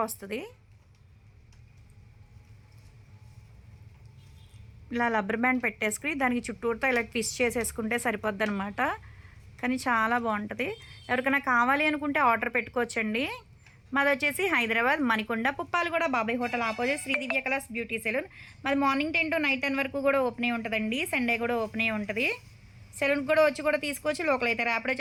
వస్తుంది. ఇలా రబ్బర్ బ్యాండ్ పెట్టేసుకుని దానికి చుట్టూతో ఇలా ట్విస్ట్ చేసేసుకుంటే సరిపోద్ది అనమాట. కానీ చాలా బాగుంటుంది. ఎవరికైనా కావాలి అనుకుంటే ఆర్డర్ పెట్టుకోవచ్చండి. మాది వచ్చేసి హైదరాబాద్ మణికొండ పుప్పాలగూడ బాబాయ్ హోటల్ ఆపోజిట్ శ్రీ దివ్య కలర్స్ బ్యూటీ సెలూన్. మాది మార్నింగ్ 10 to నైట్ 10 వరకు కూడా ఓపెన్ అయి ఉంటుందండి. సండే కూడా ఓపెన్ అయి ఉంటుంది. సెలూన్కి కూడా వచ్చి కూడా తీసుకోవచ్చు. లోకల్ అయితే ర్యాపిడో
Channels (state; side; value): identical; both; correlation 1.00